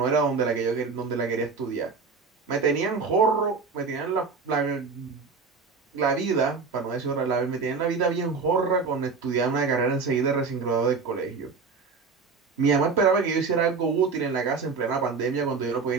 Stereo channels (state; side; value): quieter; left; 4.8 dB